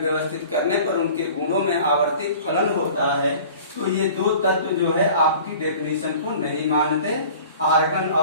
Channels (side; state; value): both; inverted; correlation -0.45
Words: करने पर उनके गुणों में आवर्तित फलन होता है, तो ये 2 तत्व जो है आपकी डेफिनेशन को नहीं मानते, आर्गन